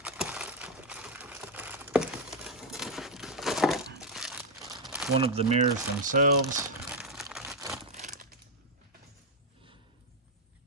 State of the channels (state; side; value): normal; both; correlation 0.03